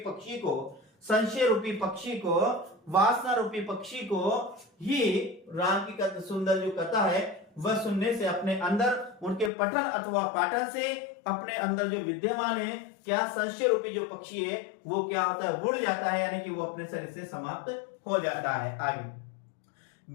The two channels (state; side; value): drops out; right; at 9.5 s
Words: पक्षी को, संशय रूपी पक्षी को, वासना रूपी पक्षी को ही राम की सुंदर जो कथा है वह सुनने से अपने अंदर उनके पठन अथवा पाठन से अपने अंदर जो विद्यमान है क्या संशय रूपी जो पक्षी है वो क्या होता है, उड़ जाता है, यानी कि वो अपने शरीर से समाप्त हो जाता है। आगे,